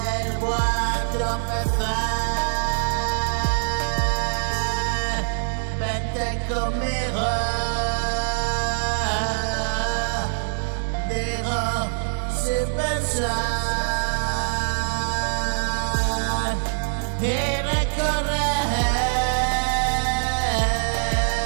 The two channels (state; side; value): silent; left; digital silence